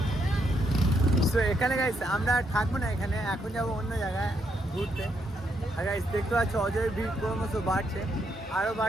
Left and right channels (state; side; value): normal; both; correlation 0.77